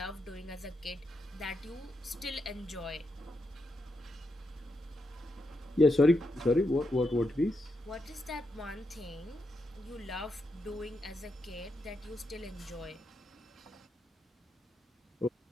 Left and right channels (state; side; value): normal; both; correlation 0.83